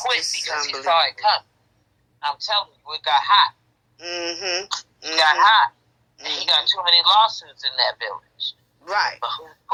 because he saw it coming. I'm telling you, it got hot. It got hot. And he got too many lawsuits in that village. Right. But whose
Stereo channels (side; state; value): both; identical; correlation 1.00